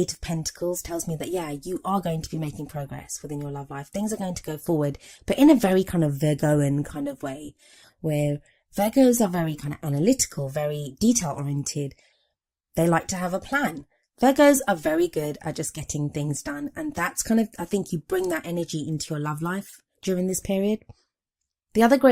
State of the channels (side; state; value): both; identical; correlation 1.00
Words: of Pentacles tells me that, yeah, you are going to be making progress within your love life. Things are going to go forward, but in a very kind of Virgoan kind of way, where Virgos are very kind of analytical, very detail oriented. They like to have a plan. Virgos are very good at just getting things done. And that's kind of, I think you bring that energy into your love life during this period. The other